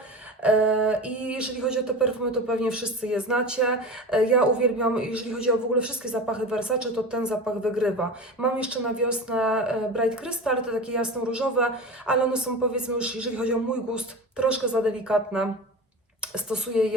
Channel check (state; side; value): normal; both; correlation 0.30